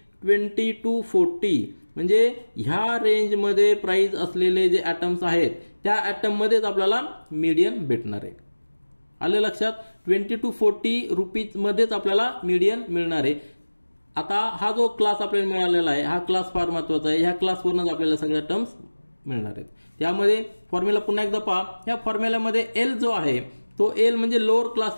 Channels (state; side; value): inverted; both; correlation -1.00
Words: 20 to 40. म्हणजे ह्या रेंजमध्ये प्राइस असलेले जे ॲटम्स आहेत त्या ॲटम मध्येच आपल्याला मीडियन भेटणार आहे. आलं लक्षात? 20 to 40 रुपीज मध्येच आपल्याला मीडियन मिळणार आहे. आता हा जो क्लास आपल्याला मिळालेला आहे हा क्लास फार महत्त्वाचा आहे. ह्या क्लासवरूनच आपल्याला सगळ्या टर्म्स मिळणार आहेत. त्यामध्ये फॉर्म्युला पुन्हा एकदा पहा. ह्या फॉर्म्युल्यामध्ये एल जो आहे तो एल म्हणजे lower